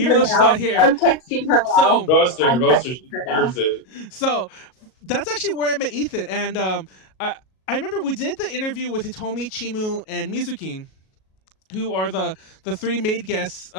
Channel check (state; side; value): late; right; 37 ms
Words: though she's not here. I'm texting her. So roast her. She deserves it. So that's actually where I met Ethan, and I remember we did the interview with Hitomi, Chimu, and Mizukin. who are the three maid guests